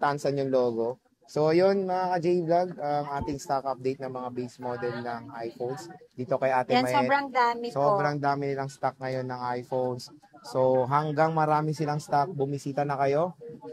yung logo. So, yun mga ka-J-Vlog, ang ating stock update ng mga base model ng iPhones. Dito kay Ate Yan, Mayet. sobrang dami po. Sobrang dami nilang stock ngayon ng iPhones. So, hanggang marami silang stock, bumisita na kayo.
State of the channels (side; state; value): both; identical; correlation 1.00